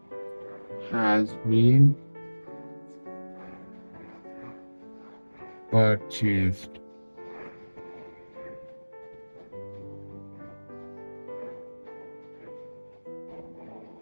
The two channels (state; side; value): inverted; both; correlation -1.00